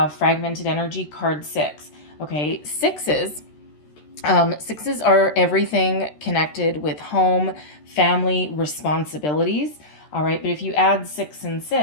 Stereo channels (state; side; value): late; right; 13 ms